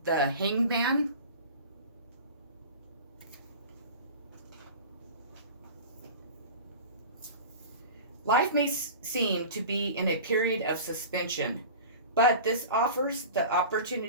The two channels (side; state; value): both; inverted; correlation -0.36